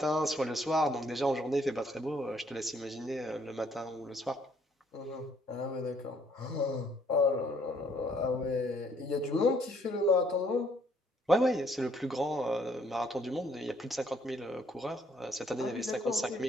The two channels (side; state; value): both; normal; correlation 0.66